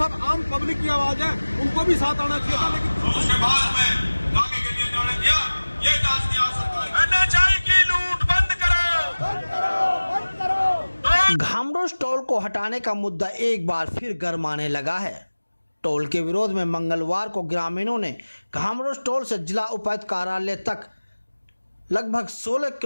आम पब्लिक की आवाज है, उनको भी साथ आना चाहिए था। लेकिन उसके बाद में आगे के लिए जाने दिया, ये डाल दिया सरकार एनएचआई की लूट बंद करो। घामरोज टोल को हटाने का मुद्दा एक बार फिर गरमाने लगा है। टोल के विरोध में मंगलवार को ग्रामीणों ने घामरोज टोल से जिला उपायुक्त कार्यालय तक लगभग 16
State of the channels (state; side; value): inverted; both; correlation -1.00